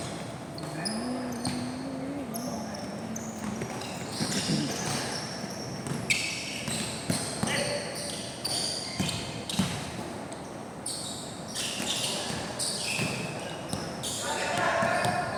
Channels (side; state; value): both; identical; correlation 1.00